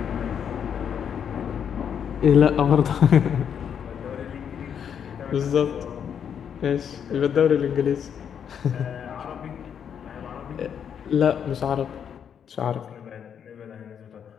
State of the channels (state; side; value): quieter; right; 8.1 dB